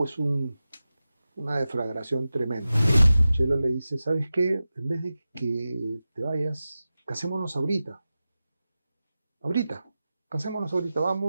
una deflagración tremenda. Chelo le dice, ¿sabes qué? En vez de que te vayas, casémonos ahorita. Ahorita, casémonos ahorita,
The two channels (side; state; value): both; inverted; correlation -0.94